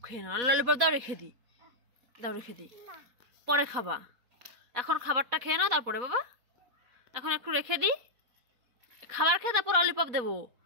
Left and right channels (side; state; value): left; late; 4.2 ms